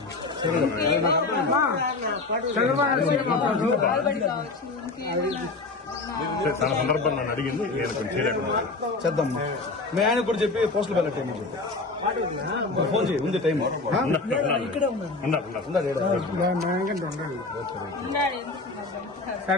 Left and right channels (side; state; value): right; quieter; 3.6 dB